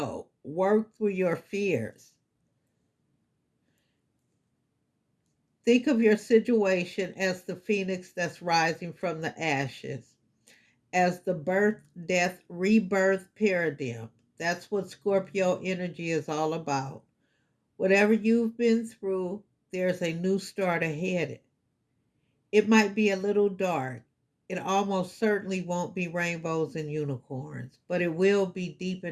work through your fears. Think of your situation as the phoenix that's rising from the ashes, as the birth, death, rebirth paradigm. That's what Scorpio energy is all about. Whatever you've been through, there's a new start ahead. It might be a little dark. It almost certainly won't be rainbows and unicorns, but it will be deep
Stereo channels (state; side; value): identical; both; correlation 1.00